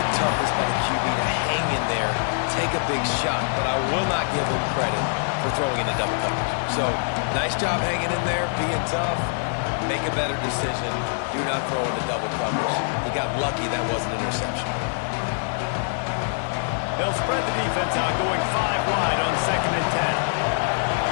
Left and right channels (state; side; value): silent; right; digital silence